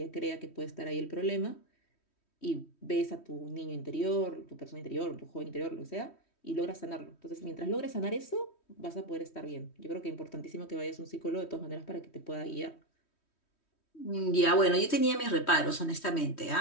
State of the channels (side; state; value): right; late; 3.1 ms